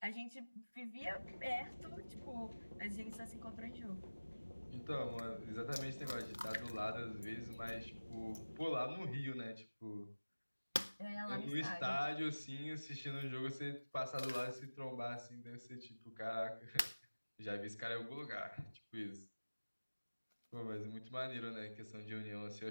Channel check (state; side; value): inverted; both; correlation -1.00